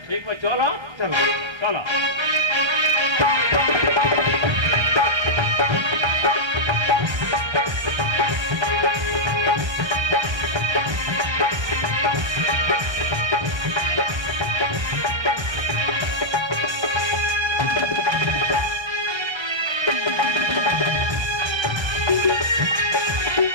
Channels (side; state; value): left; late; 1.3 ms